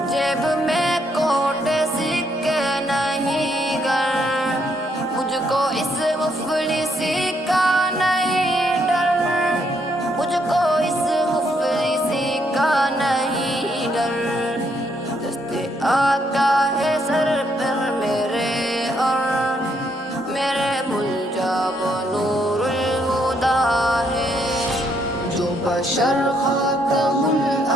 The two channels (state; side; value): normal; both; correlation 0.73